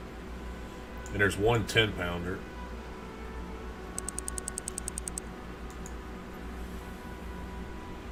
And there's one 10-pounder.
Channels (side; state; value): both; identical; correlation 1.00